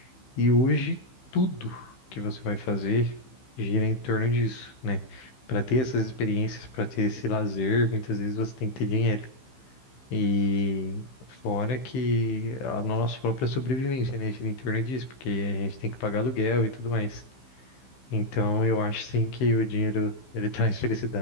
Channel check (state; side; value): late; right; 15 ms